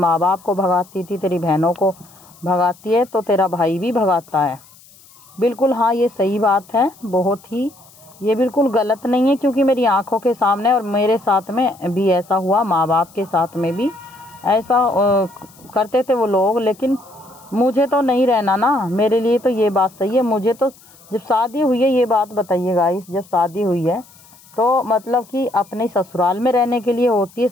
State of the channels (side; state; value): left; noise; hiss, 26 dB below the sound